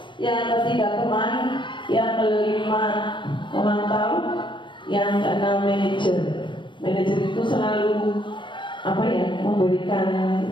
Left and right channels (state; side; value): late; right; 0.23 ms